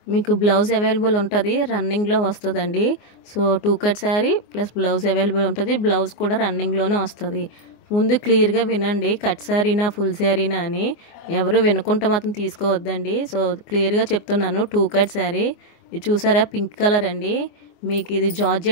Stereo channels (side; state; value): right; late; 24 ms